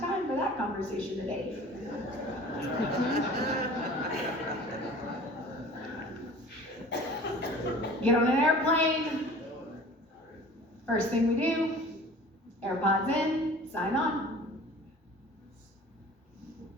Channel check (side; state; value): both; normal; correlation 0.44